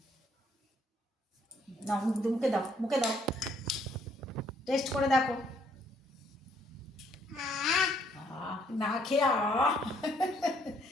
নাও, মুখে দাও, মুখে দাও, টেস্ট করে দেখো। না খেয়ে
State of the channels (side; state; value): both; normal; correlation 0.67